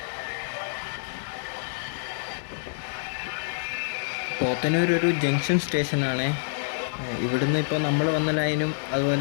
പോത്തന്നൂർ ഒരു ജംഗ്ഷൻ സ്റ്റേഷനാണ്. ഇവിടുന്ന് ഇപ്പോൾ നമ്മൾ വന്ന ലൈനും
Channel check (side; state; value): right; silent; digital silence